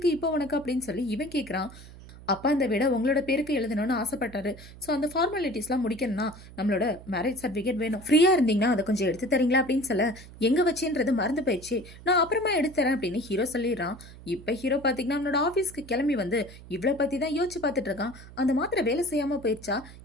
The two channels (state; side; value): noise; right; hum, 18 dB below the sound